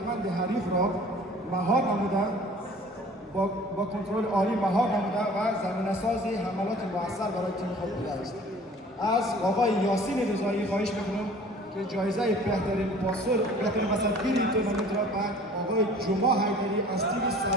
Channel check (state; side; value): normal; both; correlation 0.48